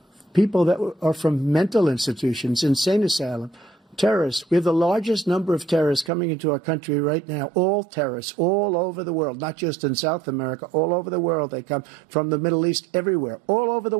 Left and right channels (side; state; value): left; drops out; at 6.1 s